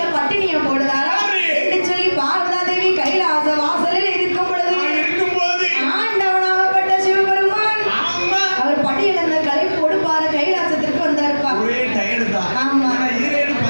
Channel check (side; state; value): both; inverted; correlation -1.00